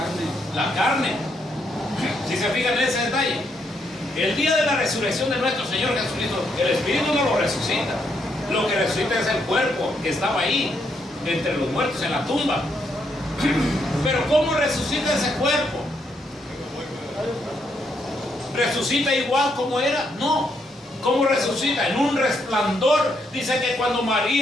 La carne. Si se fijan en ese detalle, el día de la resurrección de nuestro Señor Jesucristo, el espíritu no lo resucita. Lo que resucita es el cuerpo que estaba ahí, entre los muertos, en la tumba. Pero ¿cómo resucita ese cuerpo? ¿Resucita igual como era? No. ¿Cómo resucita? En un resplandor. Dice que cuando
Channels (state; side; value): normal; both; correlation 0.76